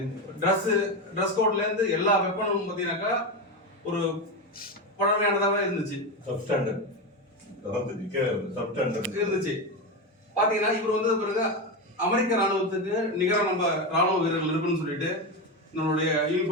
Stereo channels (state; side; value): normal; both; correlation 0.15